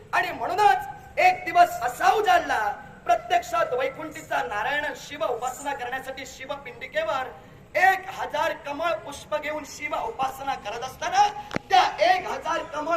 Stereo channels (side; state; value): both; identical; correlation 1.00